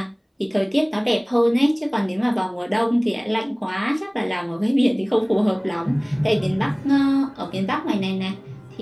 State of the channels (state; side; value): identical; both; correlation 1.00